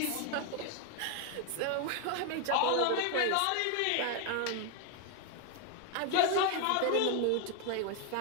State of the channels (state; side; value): different; both; correlation 0.01